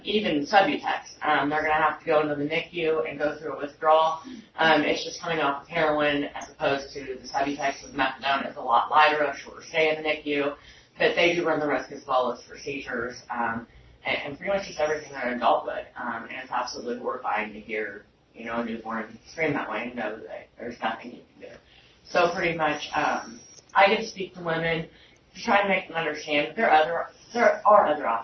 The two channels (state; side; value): identical; both; correlation 1.00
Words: even Subutex, they're going to have to go into the NICU and go through a withdrawal. It's just coming off of heroin as opposed to the Subutex with methadone. It's a lot lighter, a shorter stay in the NICU, but they do run the risk as well as for seizures and pretty much just everything that an adult would. And it's absolutely horrifying to hear, a newborn scream that way and know that there's nothing you can do. So pretty much, I get to speak to women to try to make them understand that there are other